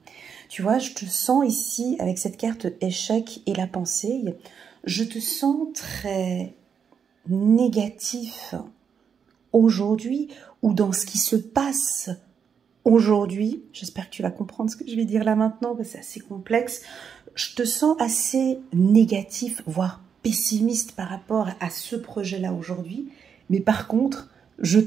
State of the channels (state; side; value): quieter; left; 7.0 dB